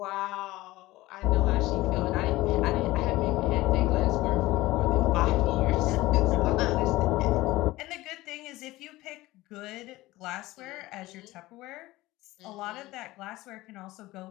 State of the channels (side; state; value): right; quieter; 18.4 dB